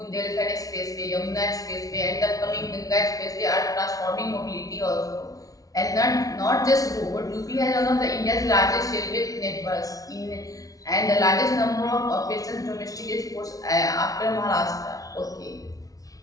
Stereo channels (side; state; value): right; late; 0.18 ms